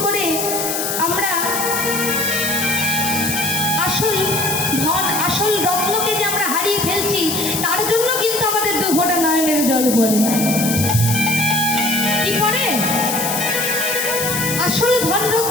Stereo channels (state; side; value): noise; left; hiss, 2 dB below the sound